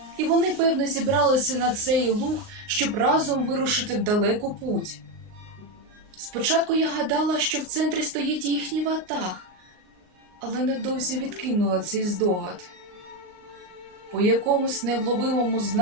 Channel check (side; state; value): left; late; 39 ms